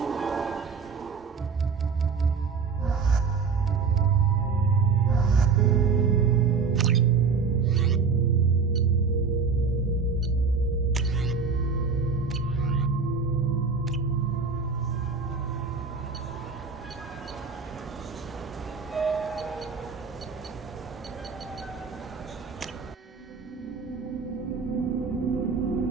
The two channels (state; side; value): quieter; left; 5.2 dB